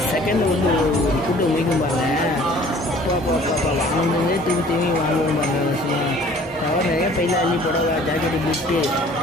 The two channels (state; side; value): normal; both; correlation 0.52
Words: செகண்ட் வந்து ஒரு கூட்டம் முடிக்கும் பாருங்க. அப்பா வாங்கினதே திரும்பி வாங்குவோம் பாருங்க. கவர் நிறைய பையில் அள்ளி புடவை ஜாக்கெட்டு பிட்டு